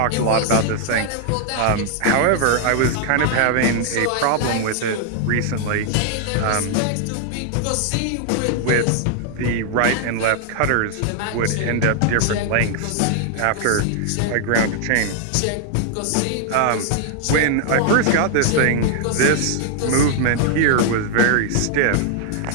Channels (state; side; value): different; both; correlation 0.00